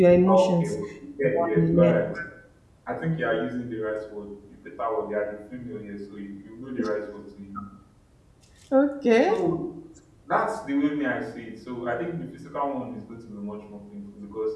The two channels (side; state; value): both; identical; correlation 1.00